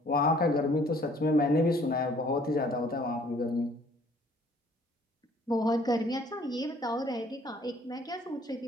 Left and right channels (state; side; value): normal; both; correlation 0.58